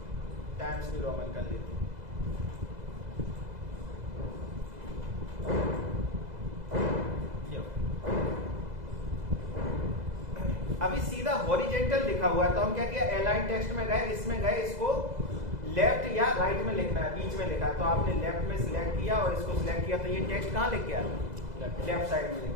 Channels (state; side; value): late; left; 2.0 ms